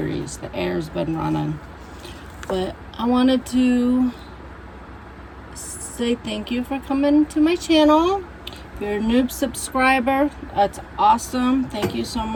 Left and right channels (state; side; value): identical; both; correlation 1.00